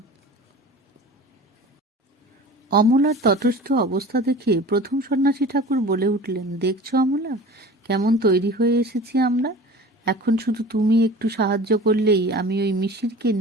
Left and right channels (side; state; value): both; normal; correlation 0.39